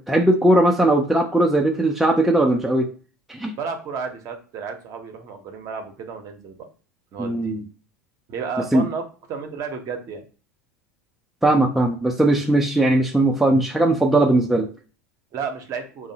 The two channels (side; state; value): both; normal; correlation 0.73